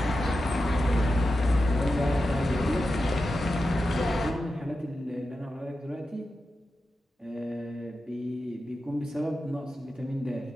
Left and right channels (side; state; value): both; normal; correlation 0.91